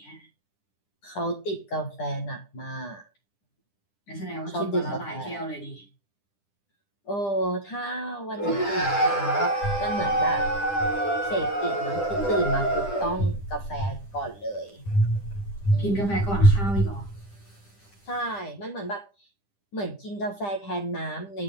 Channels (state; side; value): late; right; 10 ms